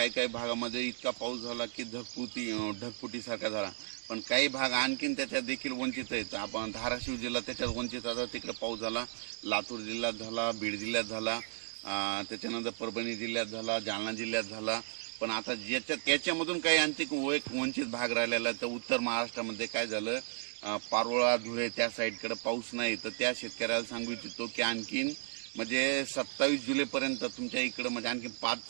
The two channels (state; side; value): silent; left; 55 dB below the other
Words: भागामध्ये इतका पाऊस झाला की ढगफुटीसारखा झाला. पण काही भाग आणखीन त्याच्यात देखील वंचित आहेत. आपण धाराशिव जिल्हा त्याच्यात वंचित आता तिकडे पाऊस झाला, लातूर जिल्ह्यात झाला, बीड जिल्ह्यात झाला, त्याच्यानंतर परभणी जिल्ह्यात झाला, जालना जिल्ह्यात झाला. पण आता त्याच्यामधून काही आणखी वंचित भाग राहिलेला तर उत्तर महाराष्ट्रामध्ये काय झालं, पारोळा धुळे त्या साईडकडे पाऊस नाही. तर त्या शेतकऱ्याला सांगू इच्छितो की आणखीन म्हणजे 27 जुलैपर्यंत तुमच्या इकडं म्हणजे आणखी